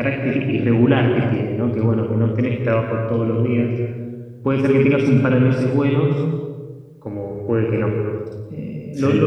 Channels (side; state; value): both; identical; correlation 1.00